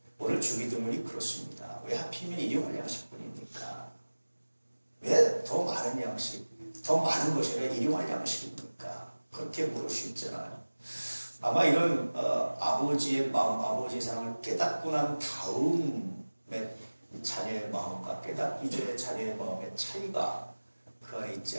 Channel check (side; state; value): both; inverted; correlation -1.00